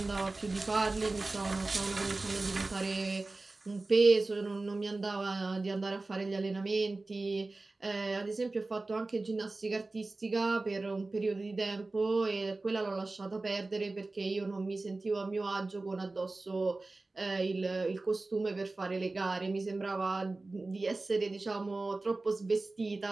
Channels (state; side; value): quieter; left; 3.3 dB